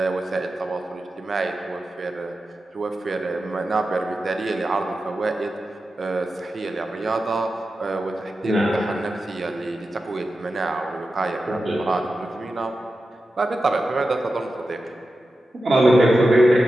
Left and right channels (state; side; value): normal; both; correlation 0.92